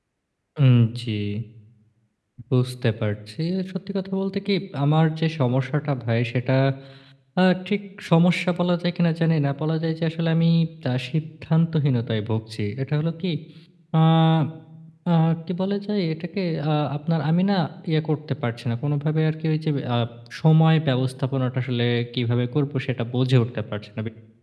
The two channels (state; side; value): identical; both; correlation 1.00